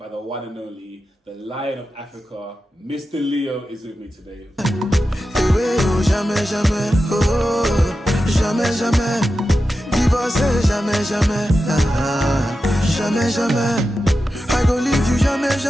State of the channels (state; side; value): normal; both; correlation 0.91